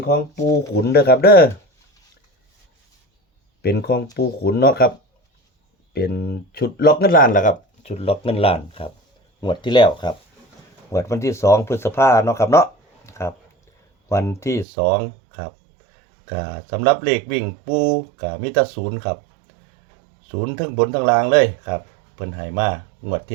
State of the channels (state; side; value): drops out; left; at 14.7 s